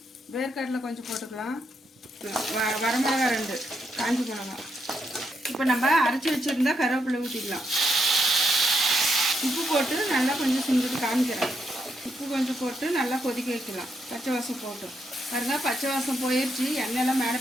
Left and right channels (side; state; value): both; normal; correlation 0.79